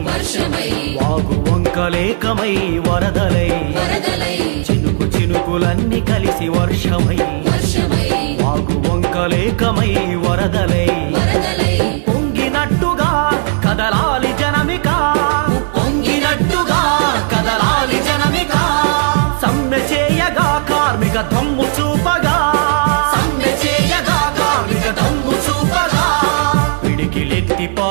వాగు వంకలేకమై వరదలై చినుకులన్నీ కలిసి వర్షమై వాగు వంకలేకమై వరదలై ఉప్పొంగినట్టుగా కదలాలి జనమిక ఉప్పొంగినట్టుగా కదలాలి జనమిక సమ్మె చేయగా కార్మిక దమ్ము చూపగా సమ్మె చేయగా కార్మిక దమ్ము చూపగా పిడికిలెత్తి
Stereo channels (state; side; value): silent; left; digital silence